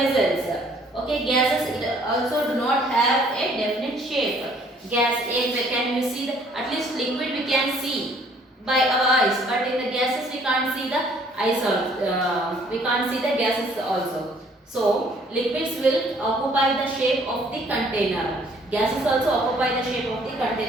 Okay, gases, it also do not have a definite shape. Gas, can you see at least liquid we can see by our eyes, but in the gases we can't see the eyes also. We can't see the gases also. So liquids will occupy the shape of the container. Gases also occupy the shape of the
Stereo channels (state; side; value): normal; both; correlation 0.60